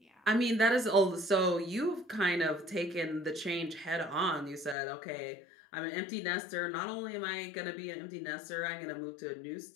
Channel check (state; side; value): drops out; right; at 4.8 s